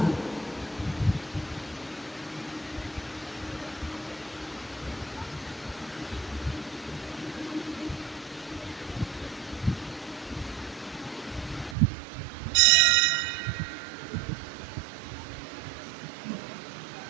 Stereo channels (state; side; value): drops out; left; at 11.8 s